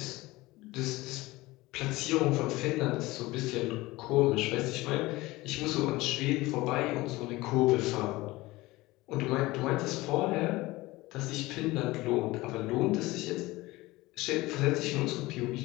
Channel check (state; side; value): quieter; right; 20.0 dB